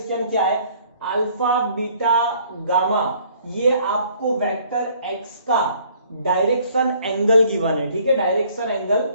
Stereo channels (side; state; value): both; inverted; correlation -0.59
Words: क्या है, अल्फा बीटा गामा, ये आपको वेक्टर एक्स का डायरेक्शन एंगल गिवन है। ठीक है, डायरेक्शन एंगल